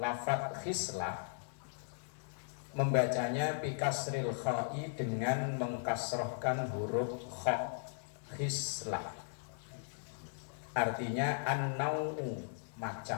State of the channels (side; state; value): right; silent; digital silence